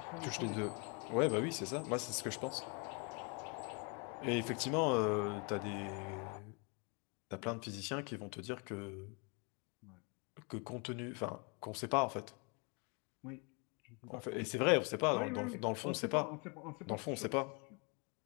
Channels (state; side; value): quieter; right; 33.0 dB